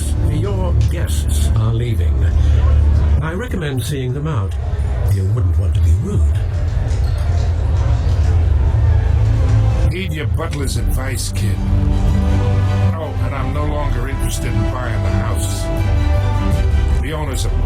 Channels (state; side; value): identical; both; correlation 1.00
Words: your guests are leaving. I recommend seeing them out. You wouldn't want to be rude. Heed your butler's advice, kid. Oh, and I'm no longer interested in buying the house. The owner's a